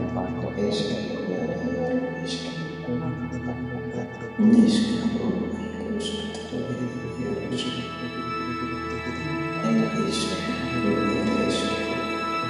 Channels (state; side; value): identical; both; correlation 1.00